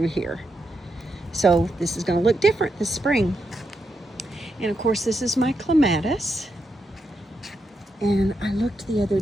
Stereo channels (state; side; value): normal; both; correlation 0.83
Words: here. So this is going to look different this spring. And of course, this is my clematis. And I looked the other